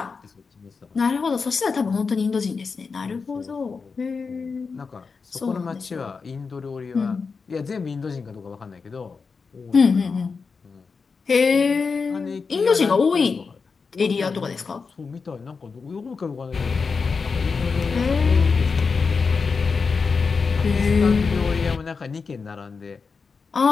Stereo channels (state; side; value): quieter; right; 5.0 dB